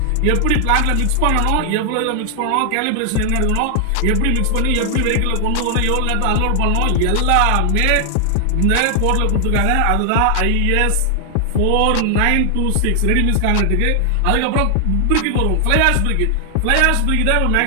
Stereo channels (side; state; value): both; different; correlation 0.00